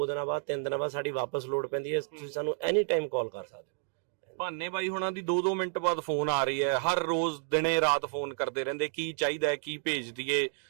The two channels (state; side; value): silent; left; 57 dB below the other